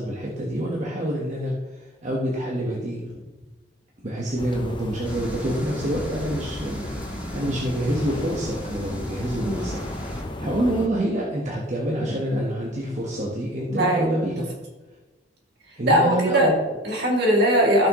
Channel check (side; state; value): both; normal; correlation 0.46